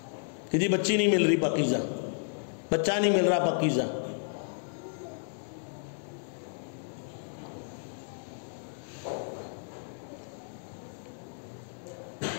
کہ جی بچی نہیں مل رہی پاکیزہ، بچہ نہیں مل رہا پاکیزہ.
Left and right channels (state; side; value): silent; right; digital silence